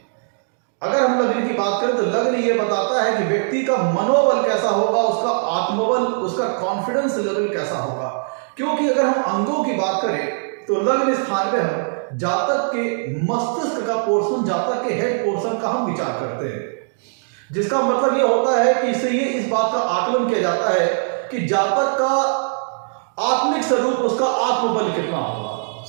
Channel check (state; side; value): silent; left; digital silence